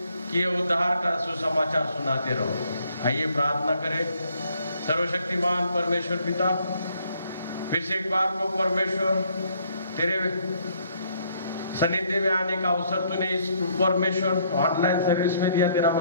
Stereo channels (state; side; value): inverted; both; correlation -0.67